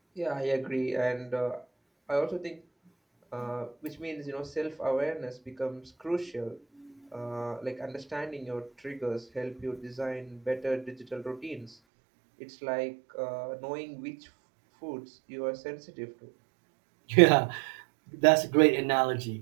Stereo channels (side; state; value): left; drops out; at 11.7 s